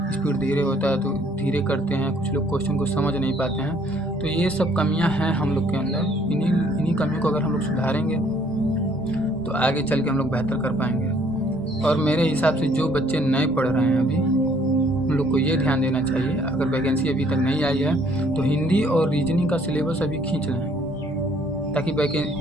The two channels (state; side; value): normal; both; correlation 0.62